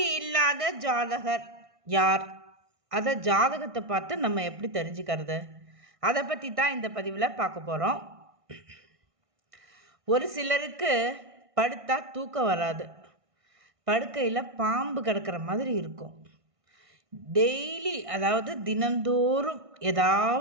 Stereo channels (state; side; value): late; left; 1.6 ms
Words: இல்லாத ஜாதகர் யார்? அதை ஜாதகத்தை பார்த்து நம்ம எப்படி தெரிஞ்சுக்கிறது? அதை பற்றி தான் இந்த பதிவில் பார்க்க போகிறோம். ஒரு சிலருக்கு படுத்தா தூக்கம் வராது, படுக்கையில் பாம்பு கிடக்கிற மாதிரி இருக்கும். டெய்லி, அதாவது தினந்தோறும்